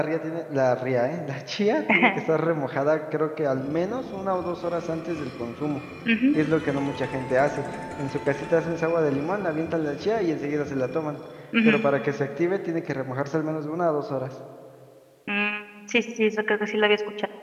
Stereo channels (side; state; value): both; identical; correlation 1.00